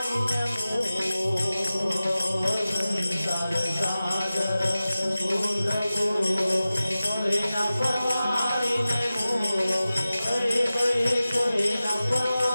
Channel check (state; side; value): inverted; both; correlation -0.96